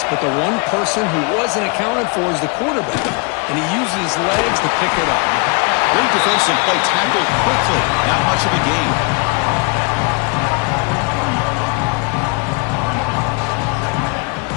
but the one person who wasn't accounted for is the quarterback. And he uses his legs to pick it up. Great defensive play, tackled quickly. Not much of a gain.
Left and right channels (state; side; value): quieter; right; 32.2 dB